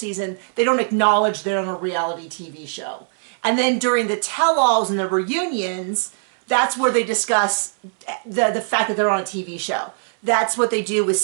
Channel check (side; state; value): left; silent; 65 dB below the other